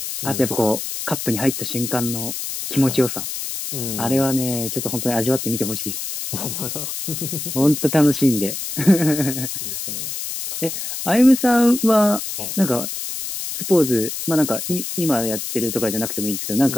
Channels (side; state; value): left; noise; hiss, 6 dB below the sound